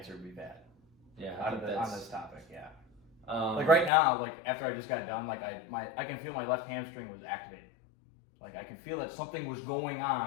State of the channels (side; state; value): right; drops out; at 3.9 s